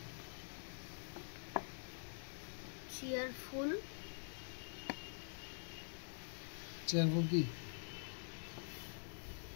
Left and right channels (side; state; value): right; silent; digital silence